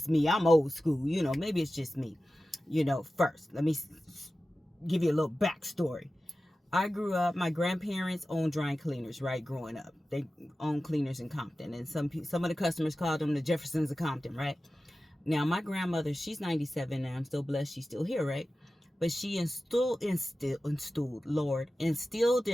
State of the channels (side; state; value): both; normal; correlation 0.95